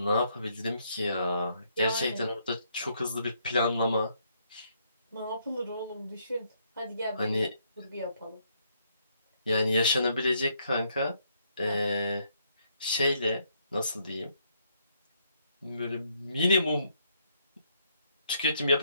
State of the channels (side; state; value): both; inverted; correlation -0.72